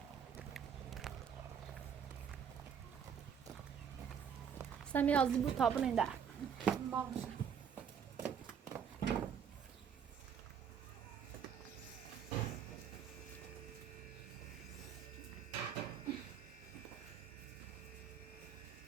سمی azı bu tabun ender.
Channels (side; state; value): left; quieter; 7.6 dB